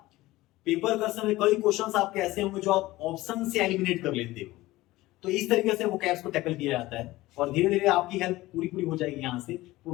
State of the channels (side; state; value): right; quieter; 18.1 dB